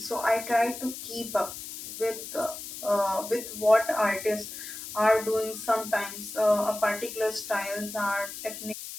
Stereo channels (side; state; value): left; noise; hiss, 10 dB below the sound